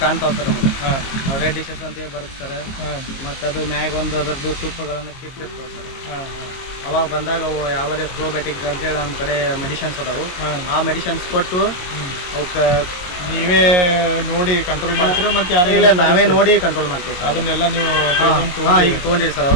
ಕಾಣ್ತಾವೆ ಸರ್ ನಮಗೆ. ರೆಡ್ ಡಿಶಸ್ ಅಂತೇಳಿ ಬರುತ್ತೆ ಸರ್. ಮತ್ತು ಅದು ಮ್ಯಾಗ ಒಂದು ಅದರದ್ದು ತುಪ್ಪಗಳನ್ನು ಕಿತ್ತಿರ್ತಾವೆ ಸರ್. ಅವಾಗ ಬಂದಾಗ ಅವು ಯಾವುದೇ ಪ್ರೋಬಯೋಟಿಕ್ ಅಂತೇಳಿ ನಮ್ಮ ಕಡೆ ಮೆಡಿಷನ್ಸ್ ಅದಾವು. ಆ ಮೆಡಿಷನ್ಸ್ ಕೊಟ್ಟು ಅವಕ್ಕೆ ನೀವೇ ನೋಡಿ ಕಂಟ್ರೋಲ್ ಮಾಡ್ತೀರಾ? ಮತ್ತು ಇಲ್ಲ, ನಾವೇ ನೋಡಿ ಕಂಟ್ರೋಲ್ ಮಾಡ್ತೀವಿ ಸರ್. ಅದನ್ನೆಲ್ಲ ನೀವು ಈಗ ತೊಗೊಂಡಿರಿ ಸರ್.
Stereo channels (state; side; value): late; right; 22 ms